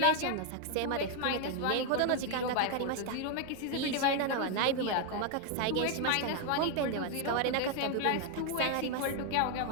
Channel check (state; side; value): different; both; correlation 0.01